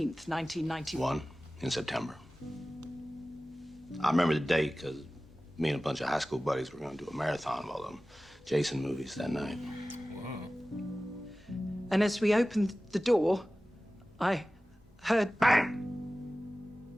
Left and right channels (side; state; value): both; normal; correlation 0.97